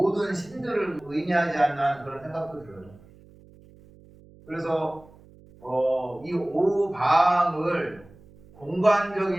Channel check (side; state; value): right; noise; hum, 24 dB below the sound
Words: 신들을 의미하지 않나 그런 생각도 들어요. 그래서 이 오방을